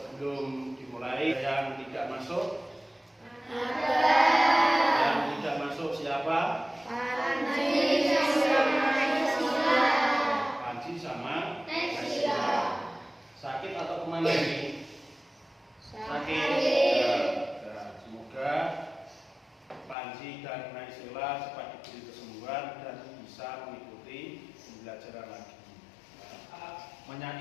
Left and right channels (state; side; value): drops out; right; at 20.0 s